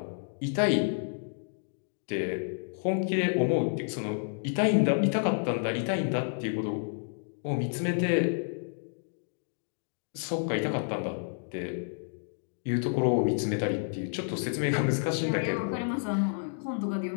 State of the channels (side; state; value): right; silent; digital silence